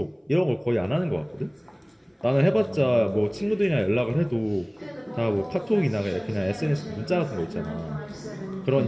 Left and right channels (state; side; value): identical; both; correlation 1.00